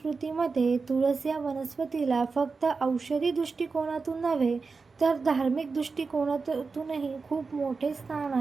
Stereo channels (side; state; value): left; quieter; 4.5 dB